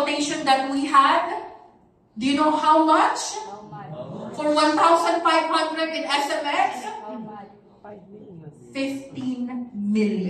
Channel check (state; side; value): identical; both; correlation 1.00